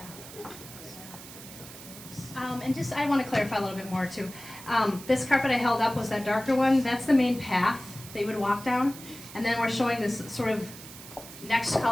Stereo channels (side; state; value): right; noise; hiss, 15 dB below the sound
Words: And just, I want to clarify a little bit more too. This carpet I held up was that darker one. That's the main path that you would walk down. And then we're showing this sort of next